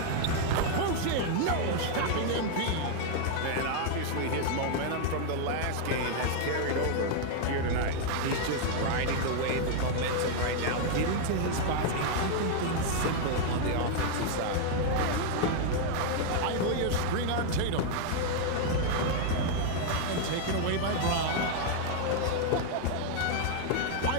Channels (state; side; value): different; both; correlation 0.00